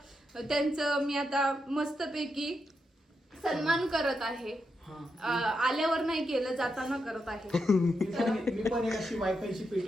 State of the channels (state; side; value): normal; both; correlation 0.84